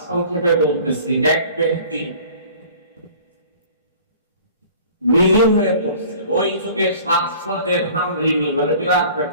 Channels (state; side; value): inverted; both; correlation -0.47